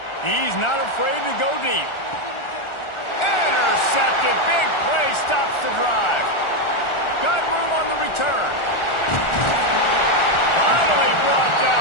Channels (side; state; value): right; late; 1.4 ms